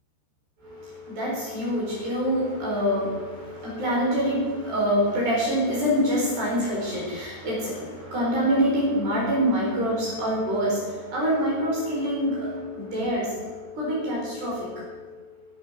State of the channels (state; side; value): late; left; 13 ms